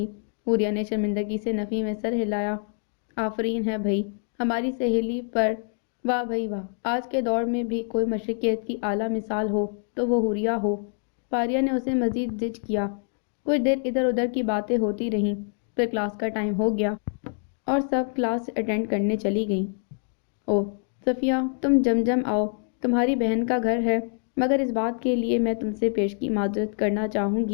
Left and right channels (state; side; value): silent; right; 55 dB below the other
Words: حوریہ نے شرمندگی سے نفی میں سر ہلایا۔ آفرین ہے بھئی ہماری سہیلی پر، واہ بھئی واہ، آج کے دور میں بھی کوئی مشرقیت کی اعلیٰ مثال ہو تو وہ حوریہ ہو۔ فاریہ نے اسے مزید زج کیا۔ کچھ دیر ادھر ادھر کی باتیں ہوتی رہیں، پھر کلاس کا ٹائم ہو گیا اور سب کلاس اٹینڈ کرنے چلی گئیں۔ اوہ صفیہ تم جم آؤ، تمہاری بہن کا گھر ہے، مگر اس بات کے لیے میں تم سے پیشگی معذرت کرنا چاہوں